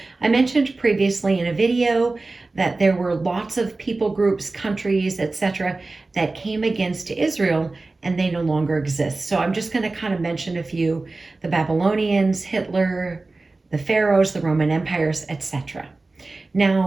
I mentioned previously in a video that there were lots of people groups, countries, etc. that came against Israel and they no longer exist. So I'm just going to kind of mention a few: the Babylonians, Hitler, the Pharaohs, the Roman empires, etc.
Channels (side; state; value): left; quieter; 3.4 dB